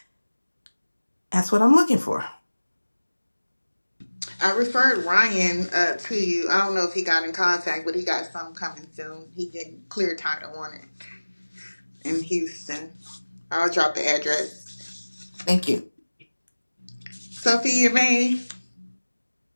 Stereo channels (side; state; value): both; inverted; correlation -1.00